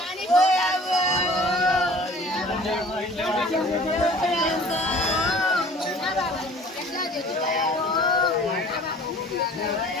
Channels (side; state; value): both; normal; correlation 0.48